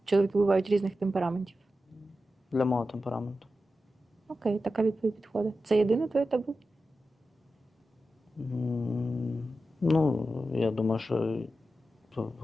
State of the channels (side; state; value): both; normal; correlation 0.92